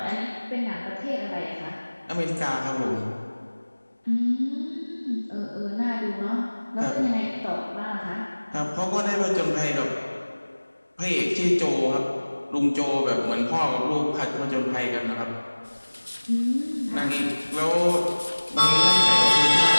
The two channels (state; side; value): inverted; both; correlation -1.00